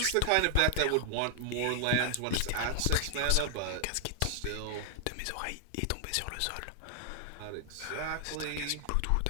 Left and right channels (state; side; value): different; both; correlation 0.00